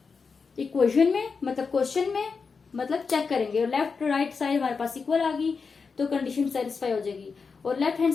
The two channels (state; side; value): quieter; right; 5.1 dB